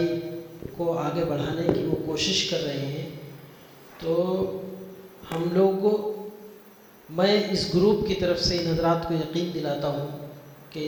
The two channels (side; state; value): both; identical; correlation 1.00